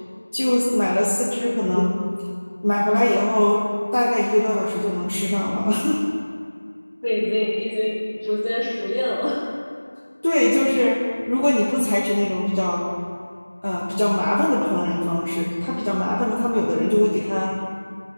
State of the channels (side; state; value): both; inverted; correlation -1.00